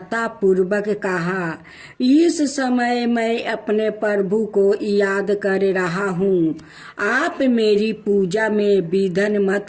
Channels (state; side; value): identical; both; correlation 1.00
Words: पूर्वक कहा, इस समय मैं अपने प्रभु को याद कर रहा हूँ। आप मेरी पूजा में विघ्न